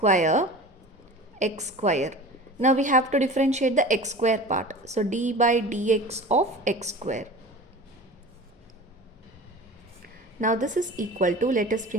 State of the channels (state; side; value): normal; both; correlation 0.37